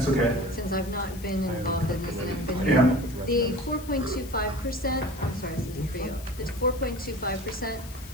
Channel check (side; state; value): left; noise; hiss, 17 dB below the sound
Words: okay. since I've not been involved in this and I've been. Yeah. The 4.25%, I'm sorry, this isn't for you, it's 4.25%,